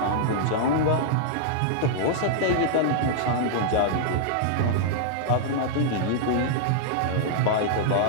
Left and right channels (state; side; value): different; both; correlation -0.01